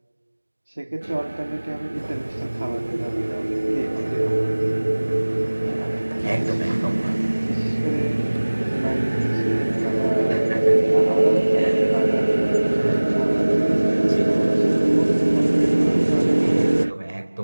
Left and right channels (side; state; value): both; inverted; correlation -1.00